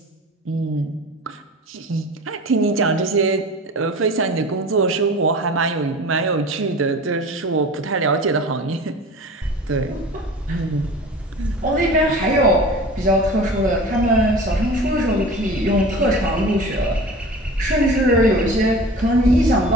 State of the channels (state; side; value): normal; both; correlation 0.38